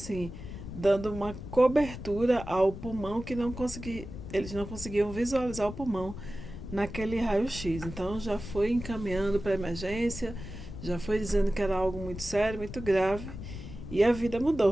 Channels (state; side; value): noise; left; rumble, 10 dB below the sound